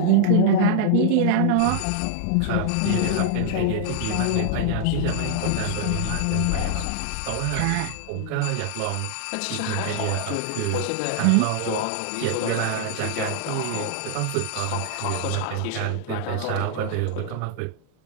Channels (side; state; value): both; different; correlation -0.01